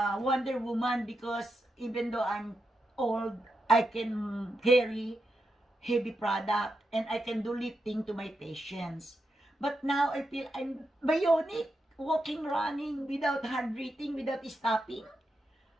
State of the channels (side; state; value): both; normal; correlation 0.86